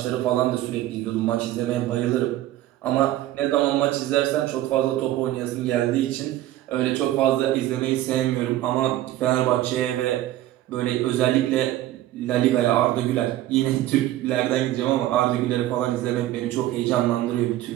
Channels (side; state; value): left; quieter; 14.4 dB